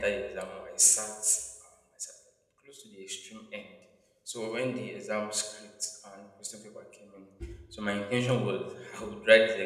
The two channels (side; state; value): both; identical; correlation 1.00